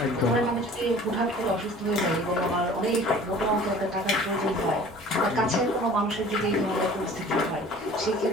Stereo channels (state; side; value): normal; both; correlation 0.47